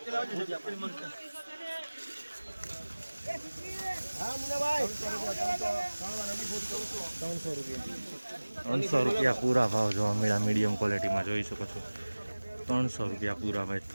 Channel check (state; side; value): inverted; both; correlation -1.00